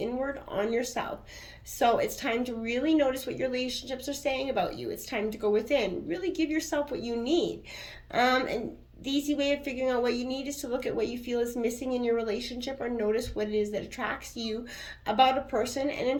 on yourself. So it's time to really notice what your relationships are saying about you. It's time to go within. Really give yourself what you need. And the easy way of figuring out what you need is to look at what you feel is missing in your relationship, or notice what it is that attracts you about a person, and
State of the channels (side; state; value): both; identical; correlation 1.00